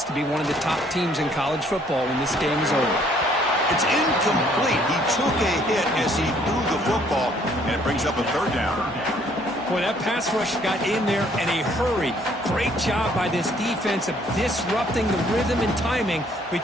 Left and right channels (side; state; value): both; normal; correlation 0.63